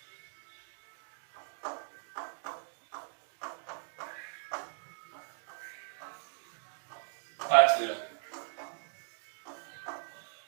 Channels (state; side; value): silent; left; digital silence